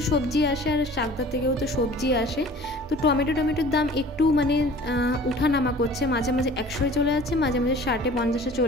সবজি আসে আর চাকদার থেকেও তো সবজি আসে। তো টমেটোর দাম একটু মানে উঠানামা করছে, মাঝে মাঝে 100-এ চলে যাচ্ছে, মাঝে মাঝে 60-50-এ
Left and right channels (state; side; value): normal; both; correlation 0.46